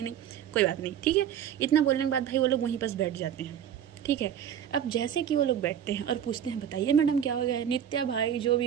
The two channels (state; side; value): quieter; left; 9.5 dB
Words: नहीं, कोई बात नहीं ठीक है। इतना बोलने के बाद भाई वो लोग वहीं पास बैठ जाते हैं। ठीक है, अब जैसे कि वो लोग बैठते हैं और पूछते हैं बताइए मैडम क्या हो गया है। नित्या भाई जो भी